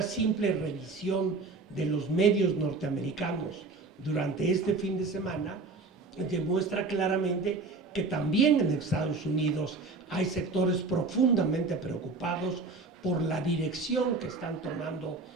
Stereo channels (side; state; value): left; quieter; 3.7 dB